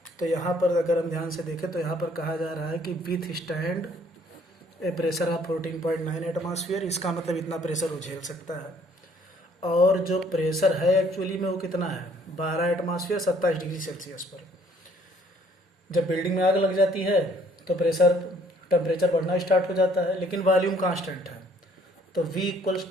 तो यहाँ पर अगर हम ध्यान से देखें तो यहाँ पर कहा जा रहा है कि with stand A pressure of 14.9 atmosphere, इसका मतलब इतना प्रेशर वो झेल सकता है। और जो प्रेशर है एक्चुअली में वो कितना है, 12 एटमॉस्फेयर 27 डिग्री सेल्सियस पर। जब बिल्डिंग में आग लग जाती है तो टेम्परेचर बढ़ना स्टार्ट हो जाता है, लेकिन वॉल्यूम कांस्टेंट है, तो V इक्वल्स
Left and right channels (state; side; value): normal; both; correlation 0.61